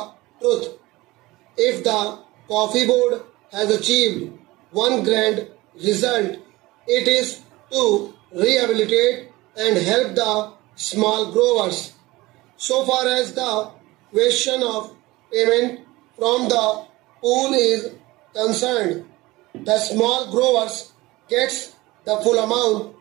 truth. If the coffee board has achieved one grand result, it is to rehabilitate and help the small growers. So far as the question of payment from the pool is concerned, the small growers gets the full amount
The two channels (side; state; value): left; quieter; 20.1 dB